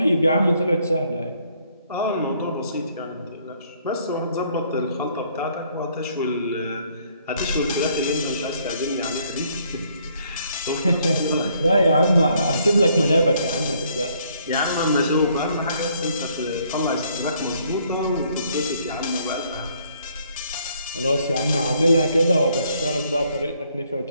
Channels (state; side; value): inverted; both; correlation -0.67